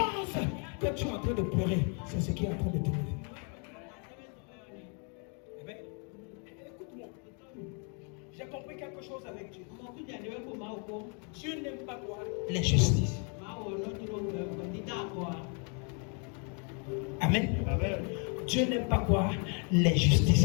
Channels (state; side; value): quieter; right; 38.4 dB